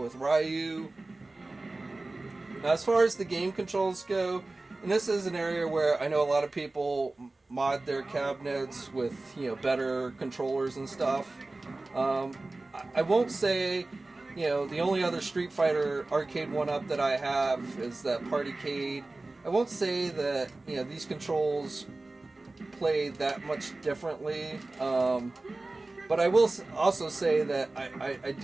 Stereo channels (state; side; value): quieter; left; 3.1 dB